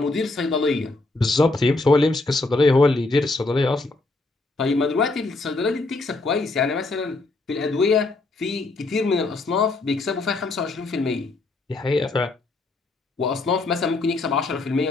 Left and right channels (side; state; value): right; quieter; 3.3 dB